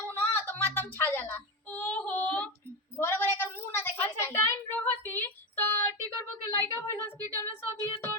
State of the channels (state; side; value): normal; both; correlation 0.15